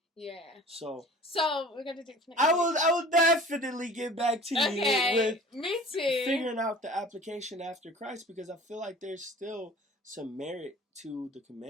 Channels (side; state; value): both; normal; correlation 0.44